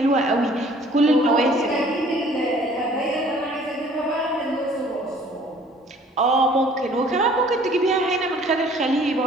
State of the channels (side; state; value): both; normal; correlation 0.54